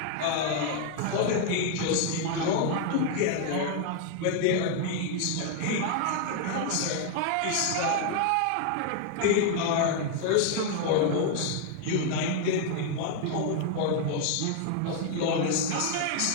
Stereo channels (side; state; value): both; different; correlation 0.00